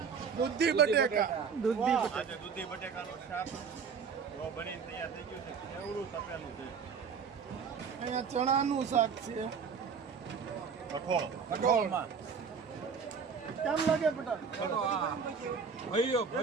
દૂધી બટેકા. આજે દૂધી બટેકાનું શાક બનીને તૈયાર થઈ ગયું છે. કેવડું તપેલું છે. અહીંયા ચણાનું શાક છે. કઠોળમાં કેમ લાગે પટેલ? ભવ્ય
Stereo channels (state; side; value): quieter; left; 6.1 dB